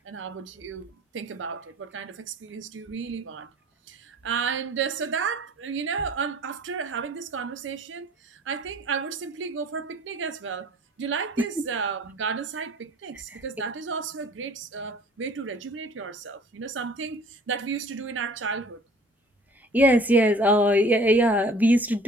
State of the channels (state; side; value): normal; both; correlation 0.49